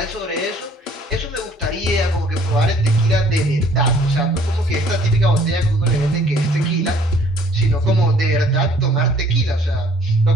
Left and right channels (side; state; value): both; normal; correlation 0.58